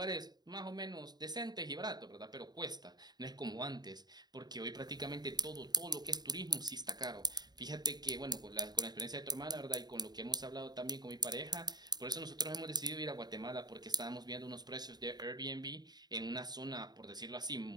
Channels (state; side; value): late; left; 0.20 ms